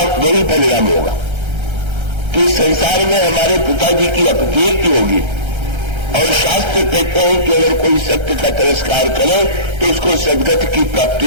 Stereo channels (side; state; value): left; late; 1.3 ms